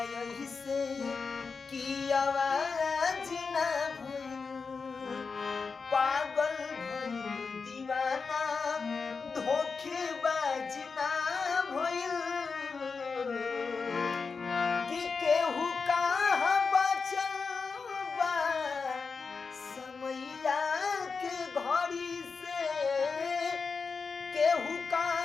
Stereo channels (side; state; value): right; quieter; 4.9 dB